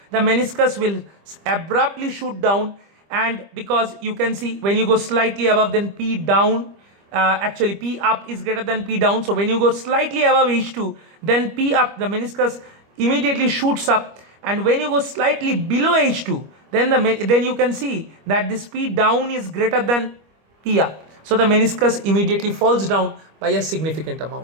the meniscus will abruptly shoot down. And because you can see when you go slightly above, then p down, actually p up is greater than p down. So when you go slightly above h2, then p up, the meniscus immediately shoots up. And when you go slightly below h2, then you can see that this p down is greater than p up. So the meniscus immediately falls down by a significant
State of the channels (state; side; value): late; left; 25 ms